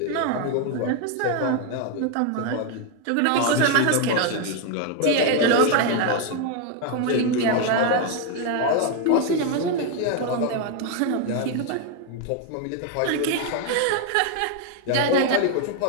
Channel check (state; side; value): different; both; correlation 0.01